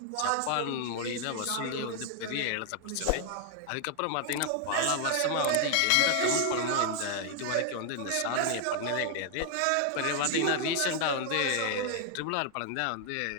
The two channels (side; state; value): both; different; correlation 0.00